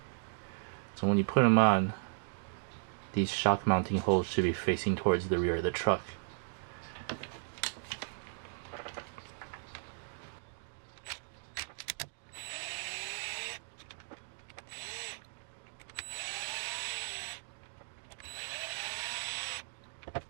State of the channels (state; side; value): silent; left; digital silence